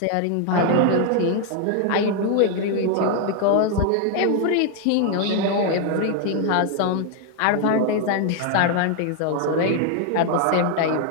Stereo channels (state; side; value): different; both; correlation 0.00